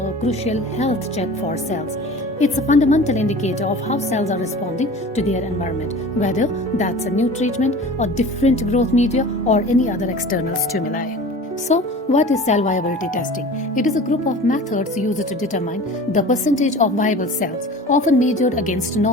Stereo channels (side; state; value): both; normal; correlation 0.39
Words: crucial health check for cells. It's a fundamental indicator of how cells are responding to their environment, whether that's a new treatment or different growth media or any other external stimuli. So, what is cell viability testing? It is a group of methods used to determine the percentage of viable cells, often measured against